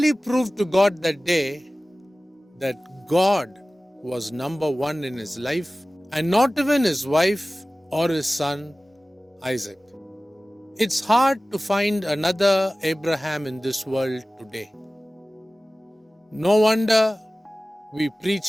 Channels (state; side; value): normal; both; correlation 0.97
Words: proved to God that day that God was number one in his life, and not even his wife or his son Isaac. It's hard to find another Abraham in this world today. No wonder we